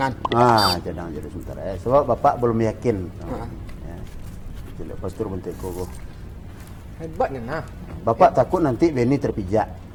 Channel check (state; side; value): identical; both; correlation 1.00